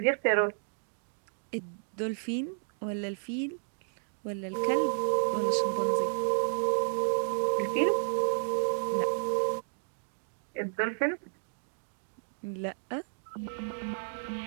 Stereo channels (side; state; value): left; silent; digital silence